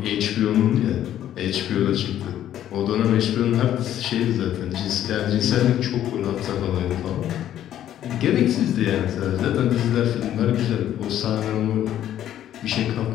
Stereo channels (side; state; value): right; quieter; 11.5 dB